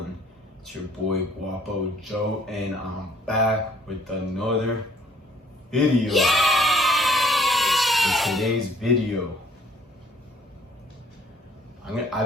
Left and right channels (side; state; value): both; normal; correlation 0.60